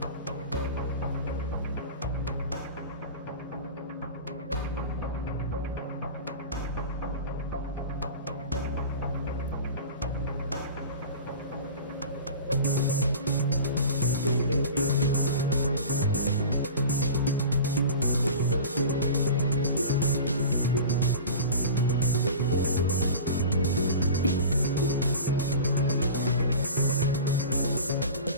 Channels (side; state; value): both; inverted; correlation -0.35